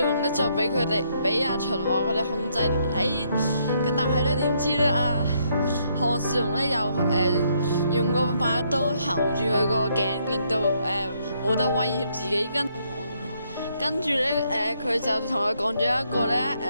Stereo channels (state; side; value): inverted; both; correlation -0.72